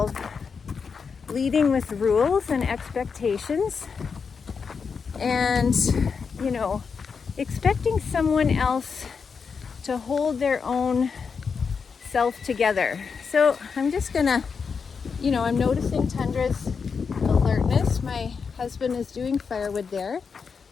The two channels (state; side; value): quieter; right; 5.7 dB